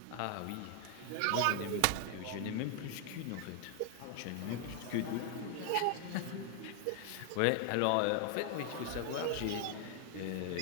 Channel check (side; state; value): both; different; correlation 0.00